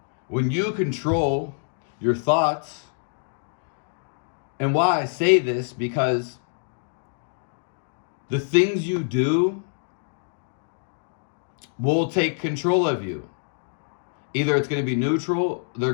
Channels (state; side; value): silent; right; digital silence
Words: when you control your thoughts, and why I say this, because the things you do will take control of you. Either it's going to be neutral, they're